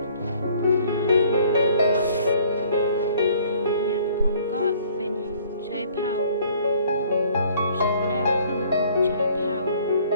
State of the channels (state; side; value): inverted; both; correlation -0.57